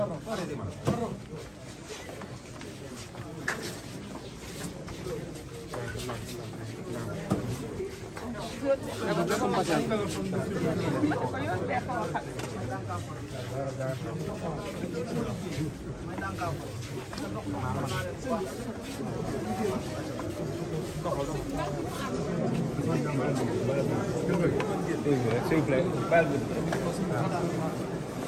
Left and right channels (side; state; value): both; identical; correlation 1.00